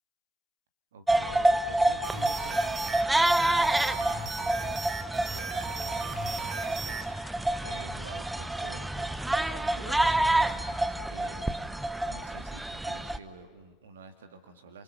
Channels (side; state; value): both; normal; correlation 0.93